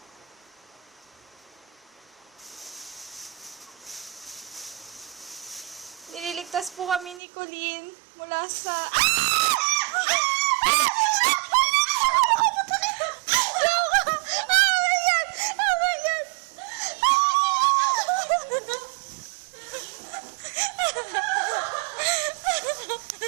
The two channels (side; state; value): left; drops out; at 7.2 s